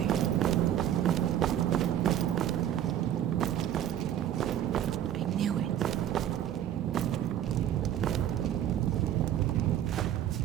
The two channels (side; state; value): left; quieter; 10.9 dB